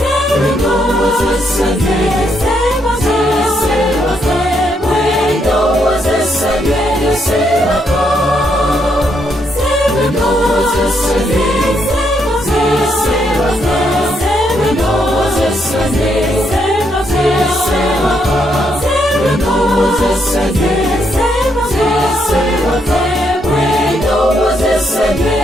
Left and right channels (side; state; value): both; normal; correlation 0.76